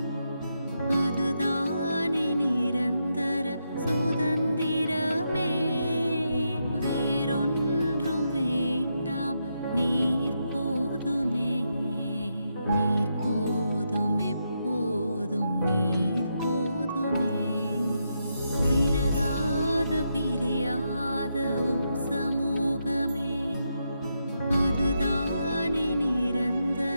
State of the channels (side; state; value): both; inverted; correlation -0.82